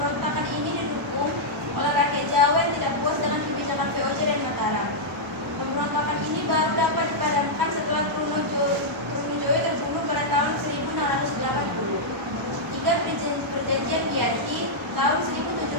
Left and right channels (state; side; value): noise; right; rumble, 28 dB below the sound